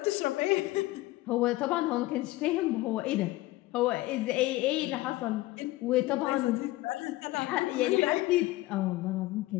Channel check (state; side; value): quieter; right; 18.3 dB